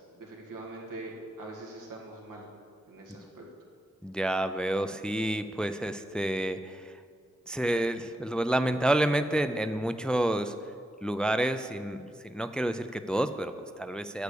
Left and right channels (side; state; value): both; normal; correlation 0.87